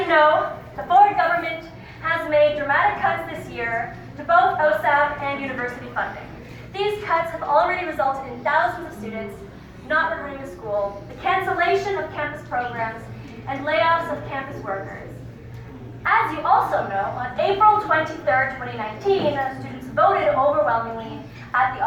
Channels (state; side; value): identical; both; correlation 1.00